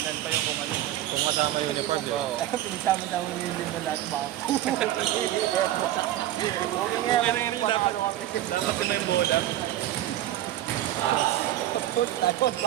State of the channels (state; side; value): quieter; left; 13.5 dB